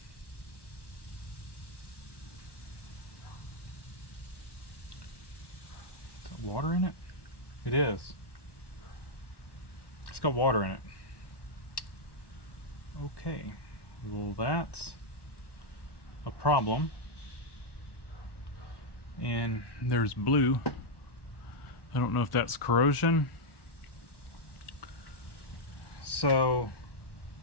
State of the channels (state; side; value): late; right; 1.1 ms